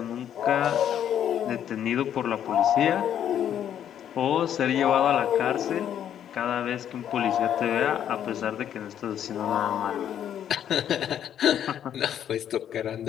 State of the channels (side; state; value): right; quieter; 9.8 dB